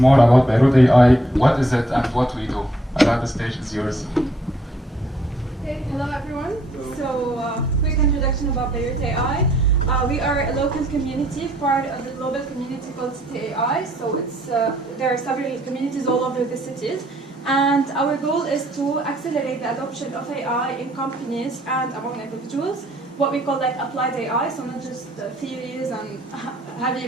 about Beirut AI, what is it and what we do. Ala, the stage is yours. Okay, hello everyone. So quick introduction about Beirut AI. We are a local community, part of the global community called City.AI. So there are several communities all over the cities. And our goal is to accelerate the adoption of AI in companies and among individuals, what we call like applied AI, so not just theories and heavy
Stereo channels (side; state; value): both; normal; correlation 0.66